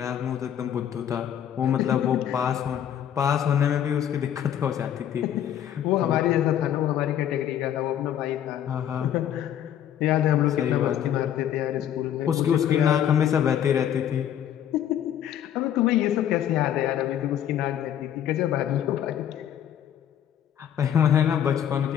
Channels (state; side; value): quieter; right; 10.1 dB